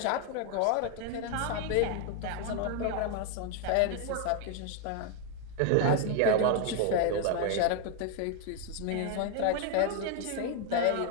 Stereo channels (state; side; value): different; both; correlation 0.00